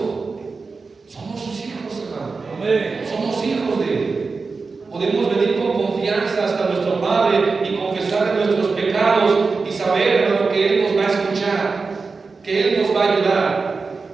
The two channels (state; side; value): quieter; left; 4.3 dB